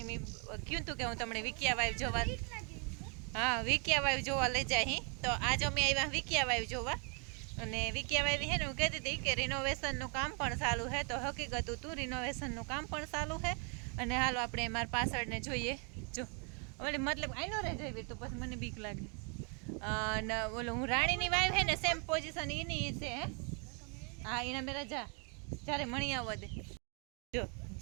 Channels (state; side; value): quieter; left; 37.0 dB